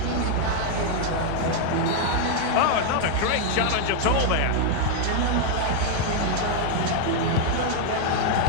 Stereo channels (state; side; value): different; both; correlation 0.00